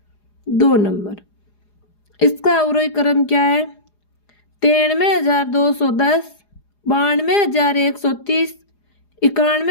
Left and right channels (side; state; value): right; late; 4.9 ms